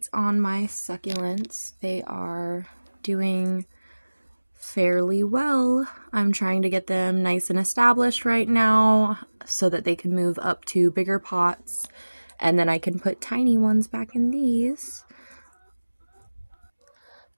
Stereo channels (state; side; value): inverted; both; correlation -1.00